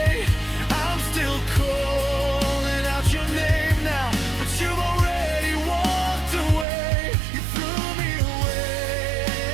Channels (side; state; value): left; drops out; at 6.7 s